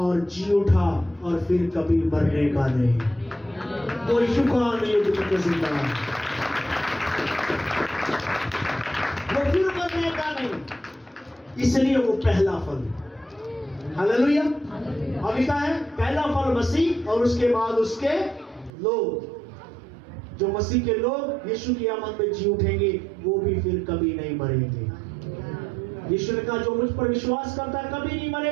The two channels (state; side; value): drops out; left; at 18.7 s